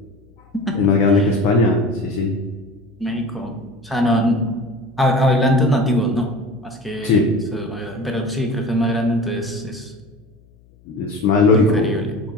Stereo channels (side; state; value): left; noise; hum, 29 dB below the sound